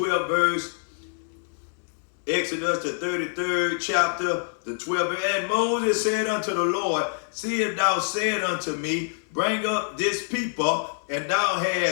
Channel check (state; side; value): silent; right; digital silence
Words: verse, Exodus, the 33rd chapter, the 12th verse, and Moses said unto the Lord, see if thou said unto me, bring up this people, and thou